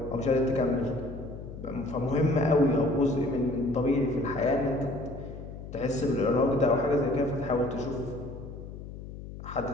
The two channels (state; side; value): noise; left; hum, 12 dB below the sound